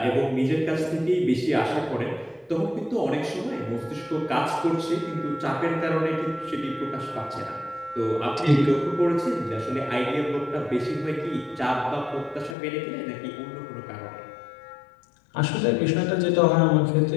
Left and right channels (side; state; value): right; drops out; at 12.6 s